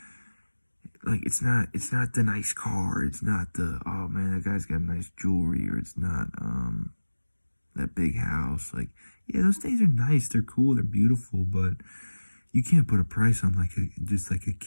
like, it's not the nice car, it's not the, oh man, that guy's got nice jewelry, or it's not that big house. Like, yeah, those things are nice, they're cool, they're beautiful, but you can't put a price on just like a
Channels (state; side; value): inverted; both; correlation -1.00